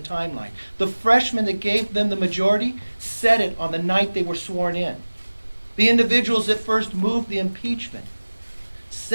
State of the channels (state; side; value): inverted; both; correlation -1.00